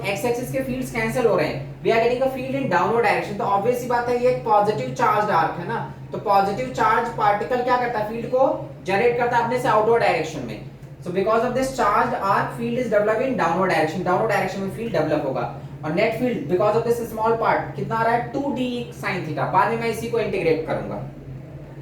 x axis के fields cancel हो रहे हैं, we are getting a field in downward direction. तो ऑब्वियस सी बात है ये एक पॉजिटिव चार्ज आर्क है ना, तो पॉजिटिव चार्ज पार्टिकल क्या करता है, फील्ड को जनरेट करता है अपने से आउटवर्ड डायरेक्शन में। So because of this charge arc field is developing in downward direction में फील्ड डेवलप होगा, और net field because of this small part कितना आ रहा है, 2D sin थीटा। बाद में मैं इसी को इंटीग्रेट करूंगा,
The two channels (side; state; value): both; identical; correlation 1.00